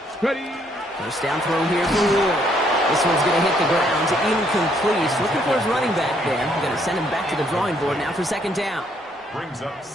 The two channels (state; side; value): normal; both; correlation 0.69